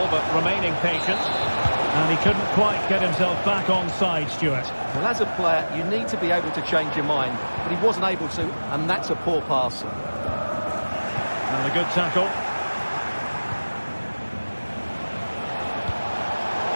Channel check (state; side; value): inverted; both; correlation -1.00